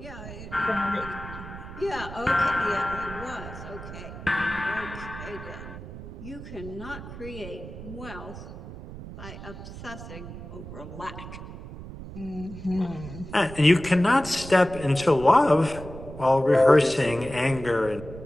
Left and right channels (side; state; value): right; noise; rumble, 12 dB below the sound